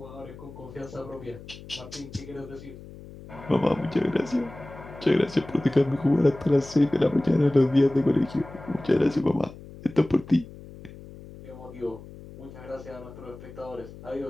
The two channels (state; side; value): noise; left; hum, 16 dB below the sound